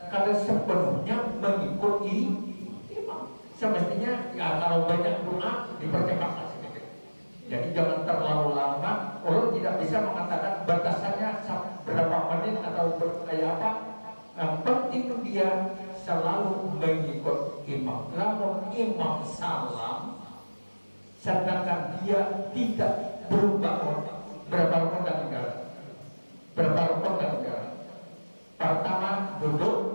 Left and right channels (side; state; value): both; inverted; correlation -1.00